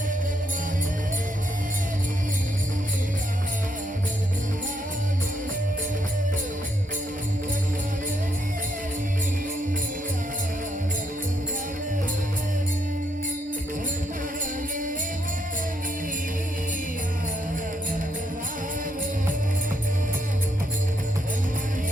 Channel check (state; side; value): normal; both; correlation 0.76